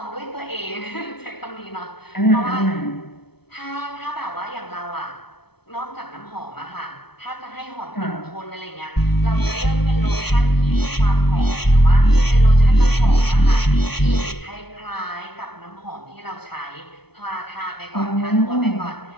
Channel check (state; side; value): late; right; 0.97 ms